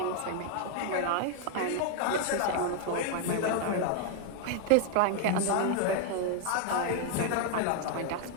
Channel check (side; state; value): both; different; correlation 0.00